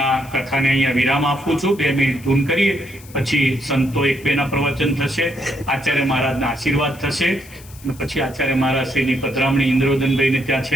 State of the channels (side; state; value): left; noise; hiss, 22 dB below the sound